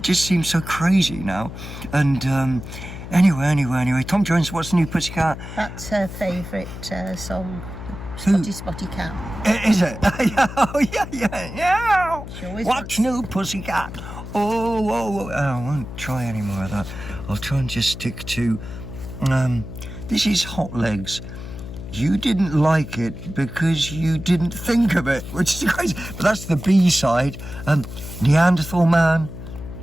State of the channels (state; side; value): noise; left; hum, 10 dB below the sound